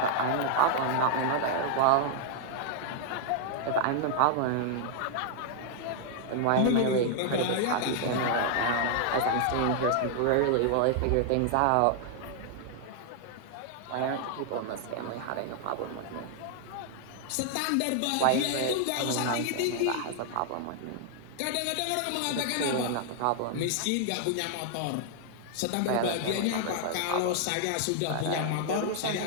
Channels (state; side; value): different; both; correlation 0.00